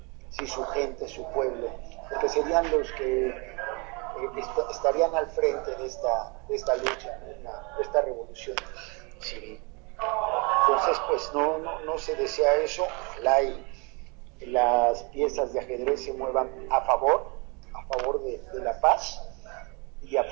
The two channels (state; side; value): quieter; left; 30.8 dB